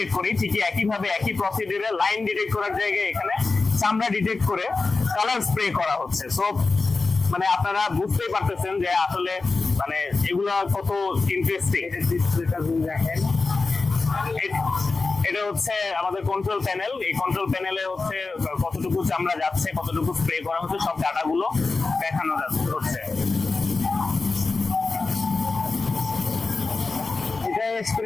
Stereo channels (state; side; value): quieter; right; 3.9 dB